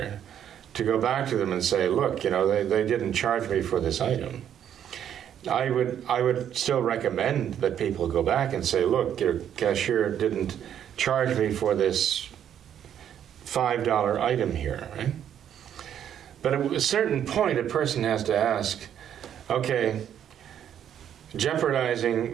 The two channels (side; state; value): left; quieter; 9.6 dB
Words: to go back to them and say, look, you know, they didn't charge me for this item. I would still recommend that people go back and say, look, your cashier didn't charge me for this $5 item here, right? But at a certain point, a person has to ask, okay,